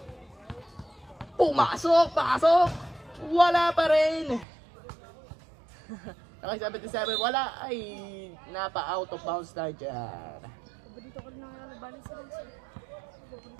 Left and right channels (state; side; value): drops out; left; at 4.5 s